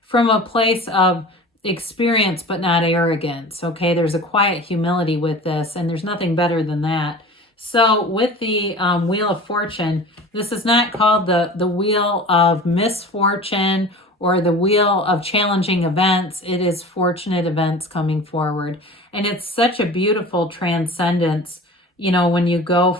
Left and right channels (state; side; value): normal; both; correlation 0.38